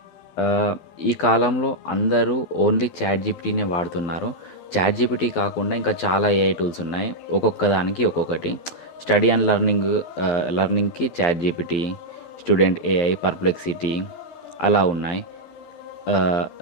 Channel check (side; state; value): right; late; 12 ms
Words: ఈ కాలంలో అందరూ ఓన్లీ చాట్ జీపీటీనే వాడుతున్నారు. చాట్ జీపీటీ కాకుండా ఇంకా చాలా ఏఐ టూల్స్ ఉన్నాయి. ఒక్కొక్క దానికి ఒక్కొక్కటి. స్టడీ అండ్ లర్నింగ్కి ChatGPT, student AI, perplexity అలా ఉన్నాయి.